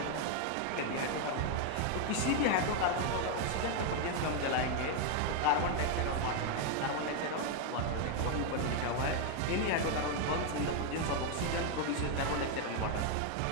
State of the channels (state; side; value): different; both; correlation 0.01